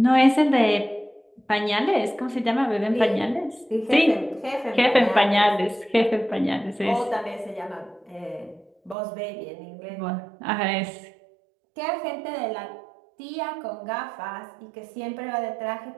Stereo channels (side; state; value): left; drops out; at 9.0 s